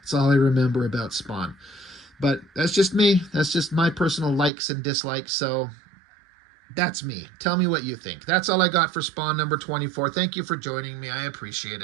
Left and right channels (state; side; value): drops out; left; at 4.5 s